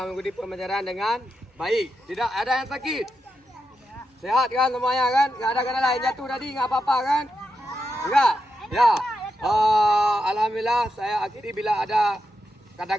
mengikuti pembelajaran dengan baik. Tidak ada yang sakit. Sehat kan semuanya kan? Enggak ada kena lain jatuh tadi, enggak apa-apa kan? Enggak. Ya. Alhamdulillah saya akhiri bila ada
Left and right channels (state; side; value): normal; both; correlation 0.86